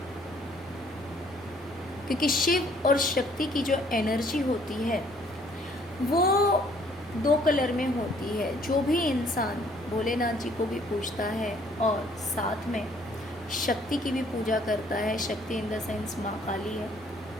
क्योंकि शिव और शक्ति की जो एनर्जी होती है वो 2 कलर में होती है। जो भी इंसान भोलेनाथ जी को भी पूजता है और साथ में शक्ति की भी पूजा करता है, शक्ति इन द सेंस माँ काली है,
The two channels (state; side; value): normal; both; correlation 0.61